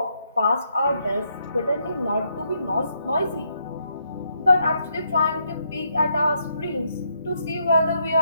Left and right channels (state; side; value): inverted; both; correlation -0.77